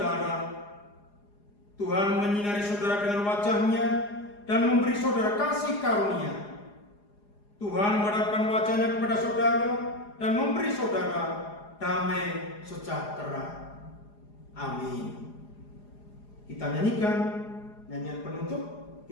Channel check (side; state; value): right; late; 4.9 ms